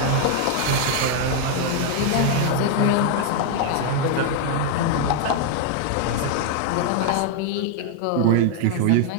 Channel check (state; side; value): different; both; correlation 0.00